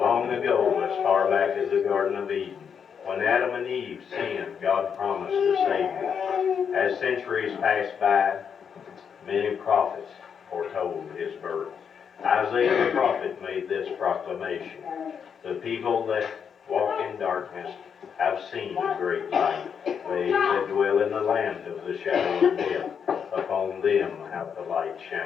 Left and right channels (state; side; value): quieter; right; 7.1 dB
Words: ago, as far back as the Garden of Eden, when Adam and Eve sinned, God promised a Savior. As centuries passed by, many prophets foretold his birth. Isaiah the prophet made this proclamation: the people that walk in darkness have seen a great light. They that dwell in the land of the shadow of death, upon them hath the light